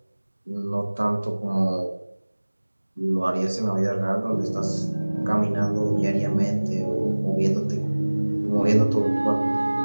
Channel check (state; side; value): inverted; both; correlation -1.00